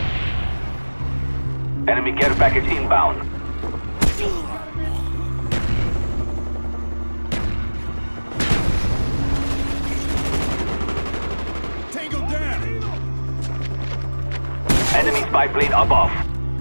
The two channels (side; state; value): both; inverted; correlation -1.00